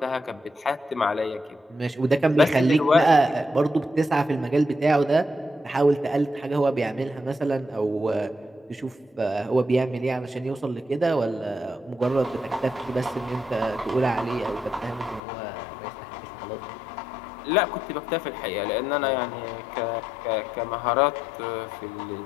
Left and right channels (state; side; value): drops out; right; at 15.2 s